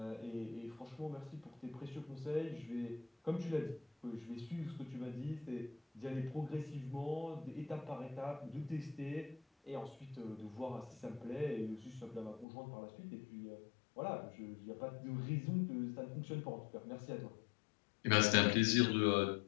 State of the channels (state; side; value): drops out; right; at 12.5 s